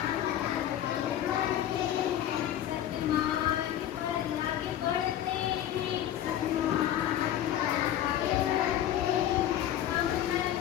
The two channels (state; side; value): quieter; right; 11.4 dB